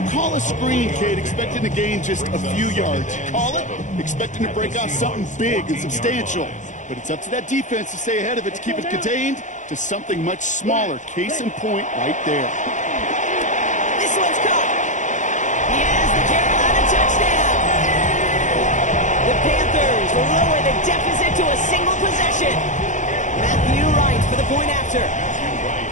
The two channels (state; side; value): late; right; 0.36 ms